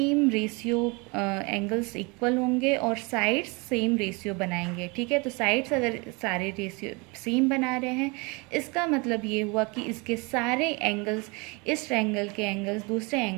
रेशियो एंगल्स इक्वल होंगे और साइड्स सेम रेशियो बनाएंगे, ठीक है। तो साइड्स अगर सारे रेशियो सेम बना रहे हैं, इसका मतलब ये हुआ कि इसके सारे एंगल्स, इस ट्रायंगल के एंगल्स दूसरे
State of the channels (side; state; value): left; quieter; 28.4 dB